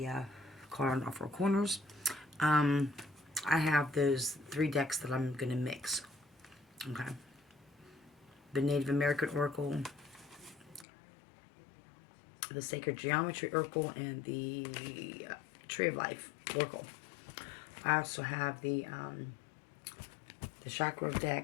caught on all four corners. I have those 3 decks that I'm going to mix. Okay. The Native American Oracle, the Sacred Geometry Oracle, and the Tree of Life Oracle. I also have the Chakra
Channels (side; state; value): right; drops out; at 10.9 s